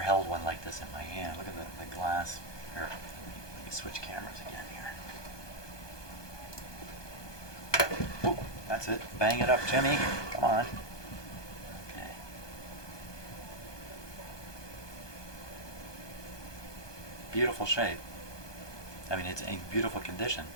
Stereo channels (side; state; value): right; late; 1.2 ms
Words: one like this in my hand. Look at the glass. Here, let me switch cameras again here. Oh, that's it. Bang it up, Jimmy. Come on. Okay. Beautiful shape. I mean, it's in beautiful condition.